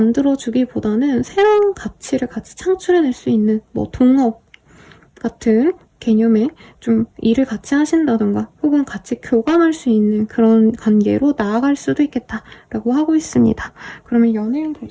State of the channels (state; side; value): identical; both; correlation 1.00